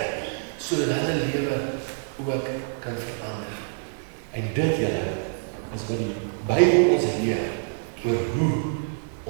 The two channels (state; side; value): silent; left; digital silence